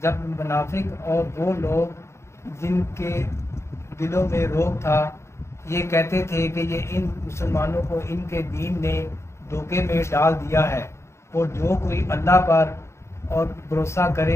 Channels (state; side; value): late; right; 0.13 ms